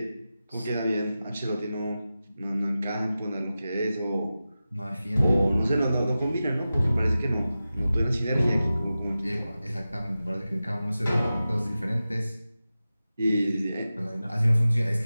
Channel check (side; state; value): both; inverted; correlation -0.94